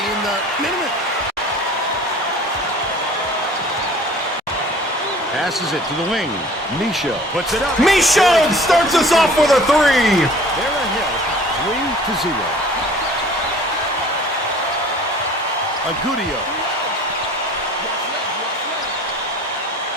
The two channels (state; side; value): normal; both; correlation 0.48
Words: in the minute. Passes it to the wing. Misho puts it up. Misho starts us off with a 3. They're ahead 3-0. Agudio.